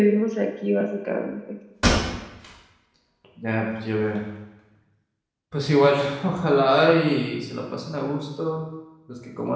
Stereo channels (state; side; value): identical; both; correlation 1.00